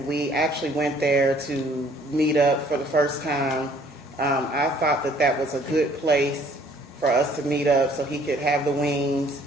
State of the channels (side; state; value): both; normal; correlation 0.59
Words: we actually went there to meet up for the first time. I thought that was a good place for us to meet up so he could have the wings,